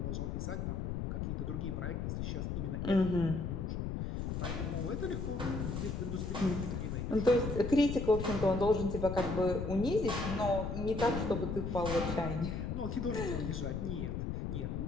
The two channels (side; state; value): left; noise; rumble, 2 dB below the sound